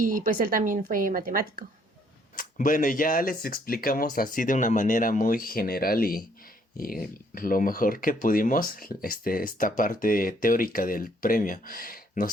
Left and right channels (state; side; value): normal; both; correlation 0.66